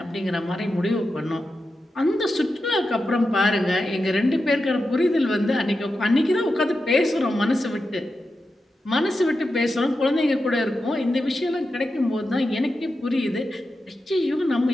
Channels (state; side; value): normal; both; correlation 0.90